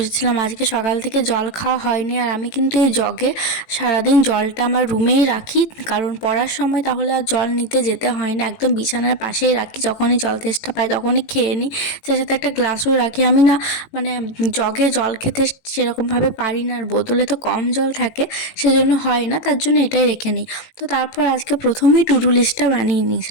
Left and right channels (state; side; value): late; right; 18 ms